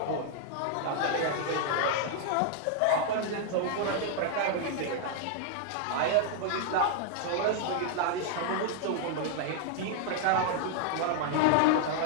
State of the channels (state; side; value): different; both; correlation 0.00